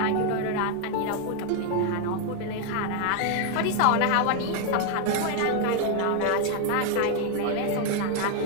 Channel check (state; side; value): different; both; correlation 0.00